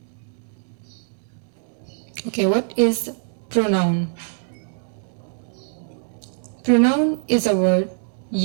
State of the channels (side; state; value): left; silent; 63 dB below the other